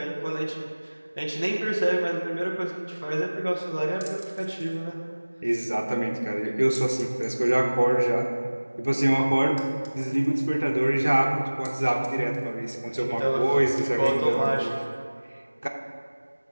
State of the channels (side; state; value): both; inverted; correlation -1.00